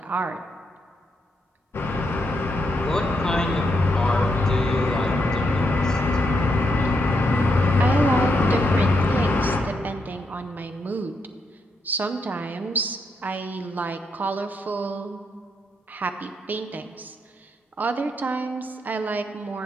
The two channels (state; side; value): normal; both; correlation 0.80